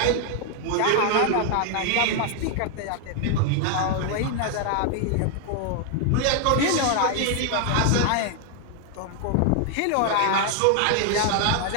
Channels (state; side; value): different; both; correlation 0.00